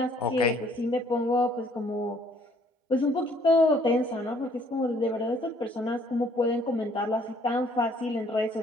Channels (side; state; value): both; normal; correlation 0.62